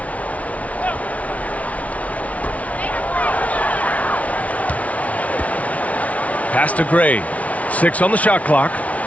Pass to Gray. 6 on the shot clock.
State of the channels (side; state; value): right; late; 0.067 ms